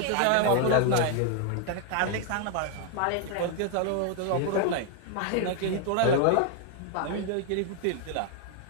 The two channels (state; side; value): different; both; correlation 0.00